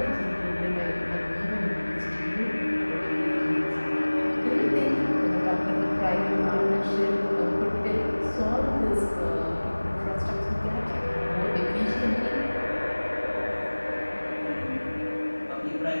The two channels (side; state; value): both; inverted; correlation -1.00